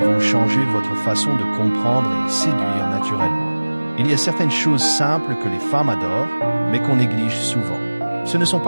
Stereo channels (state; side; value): inverted; both; correlation -1.00